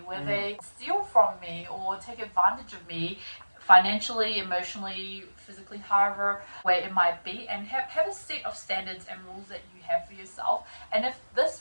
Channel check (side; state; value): both; inverted; correlation -1.00